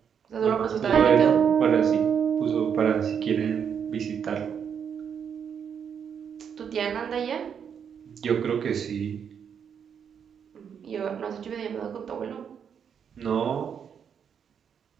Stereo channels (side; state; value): left; quieter; 7.6 dB